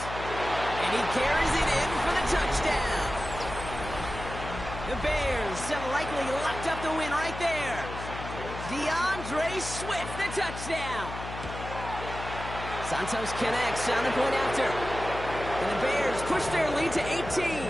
And he carries it in for the touchdown. The Bears have likely locked up the win right there. DeAndre Swift, the touchdown. Santos connects on the point after. And the Bears push their lead to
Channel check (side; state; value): left; noise; hum, 9 dB below the sound